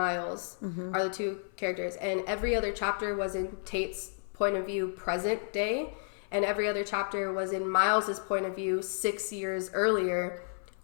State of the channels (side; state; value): right; silent; 55 dB below the other